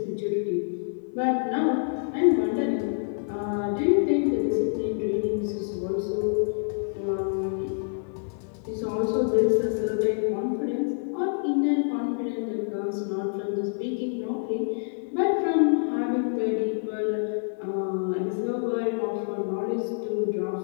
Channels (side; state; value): right; silent; 60 dB below the other